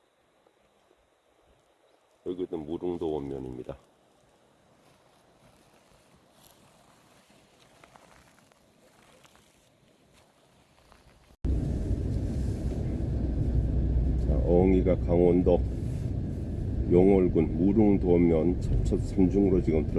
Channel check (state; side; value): identical; both; correlation 1.00